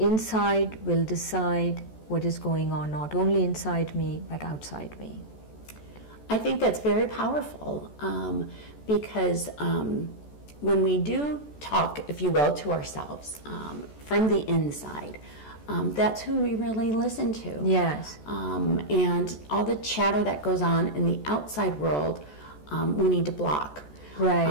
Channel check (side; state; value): right; late; 14 ms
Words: will decide what is going on, not only inside me, but outside me. I think that's very powerful, because when we do talk, if you will, to ourselves from the inside, that's who we really listen to. Yes. And all the chatter that goes on in the outside world, we need to block. Right.